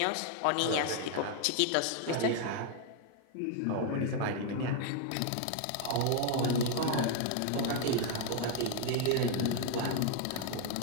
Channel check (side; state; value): both; different; correlation 0.00